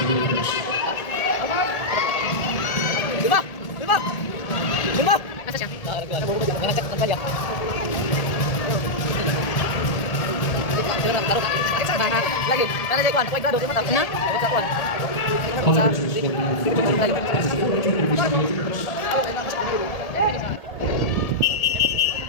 is the first. Lima! Lima! Lima! Asa siya? Nangasak ng palya. Lagi. Nana jay kwan. Kuway grado. Lima tapos. Na? Sa kwan. All the rest is for now. This is the fourth joint of the first.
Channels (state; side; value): late; right; 1.8 ms